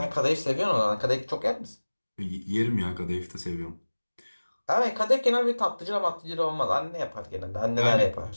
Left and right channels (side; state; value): both; inverted; correlation -1.00